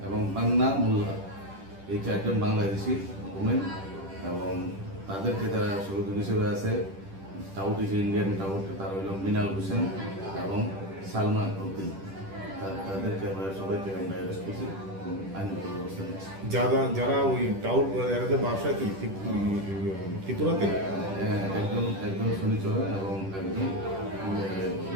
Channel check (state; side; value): late; left; 10 ms